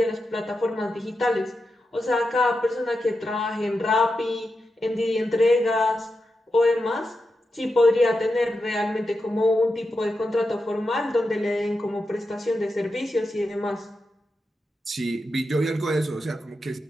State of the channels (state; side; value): normal; both; correlation 0.89